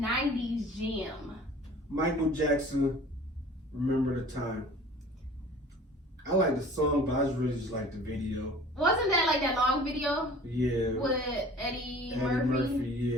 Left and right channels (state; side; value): normal; both; correlation 0.46